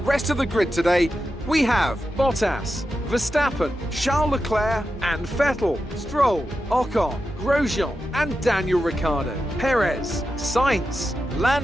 of the grid today, we have Bottas, Verstappen, Charles Leclerc and Vettel, Stroll, Ocon, Grosjean and Daniel Ricciardo, Perez, Sainz,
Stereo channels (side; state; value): both; normal; correlation 0.90